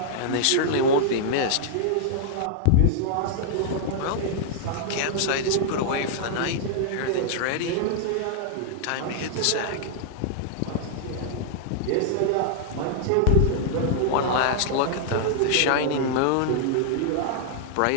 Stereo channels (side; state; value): both; different; correlation -0.01